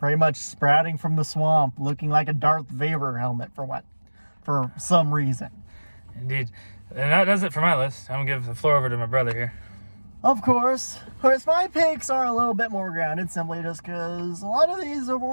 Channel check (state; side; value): inverted; both; correlation -1.00